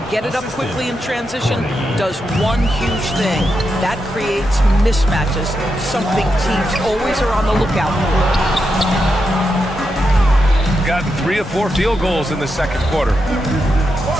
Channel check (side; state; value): both; normal; correlation 0.85